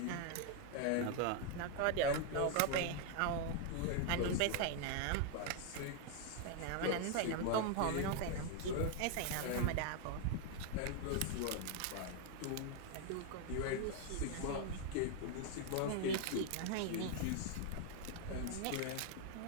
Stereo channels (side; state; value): both; different; correlation 0.00